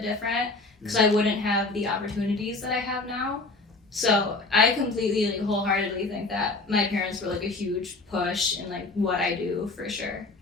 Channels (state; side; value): quieter; right; 3.4 dB